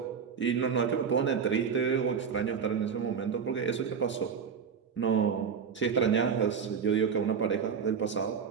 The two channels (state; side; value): quieter; left; 6.7 dB